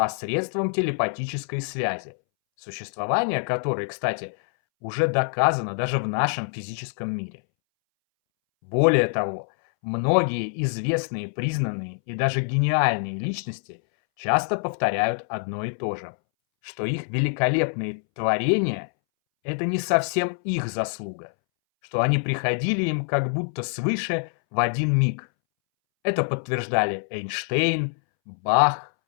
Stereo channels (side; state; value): right; silent; 62 dB below the other